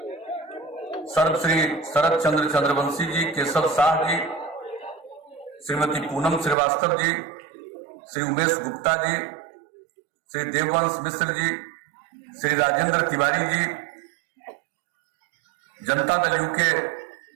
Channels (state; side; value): drops out; left; at 6.6 s